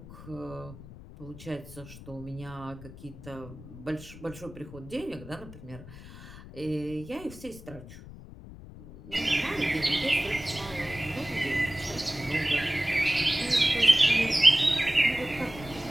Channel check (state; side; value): noise; left; rumble, 16 dB below the sound